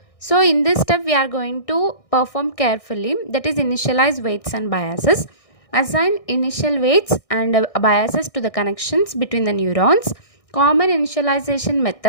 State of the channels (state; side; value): late; right; 1.6 ms